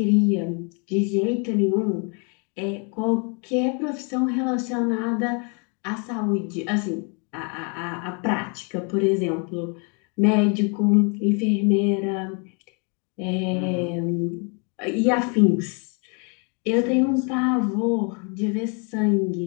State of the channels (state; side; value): quieter; right; 35.8 dB